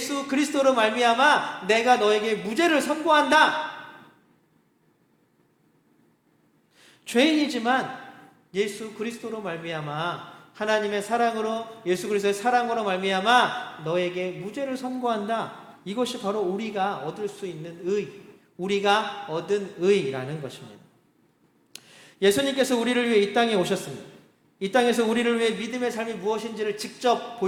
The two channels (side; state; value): both; identical; correlation 1.00